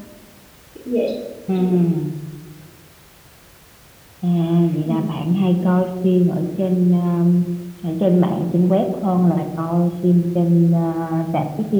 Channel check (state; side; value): identical; both; correlation 1.00